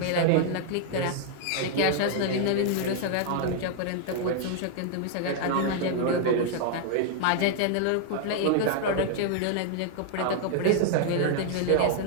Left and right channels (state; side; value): different; both; correlation 0.00